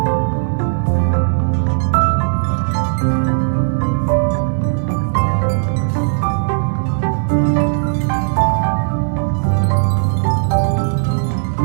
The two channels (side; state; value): left; silent; digital silence